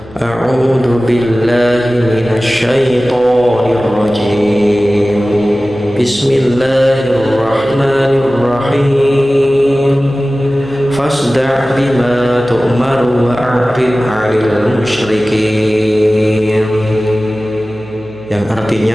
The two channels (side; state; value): left; noise; hum, 22 dB below the sound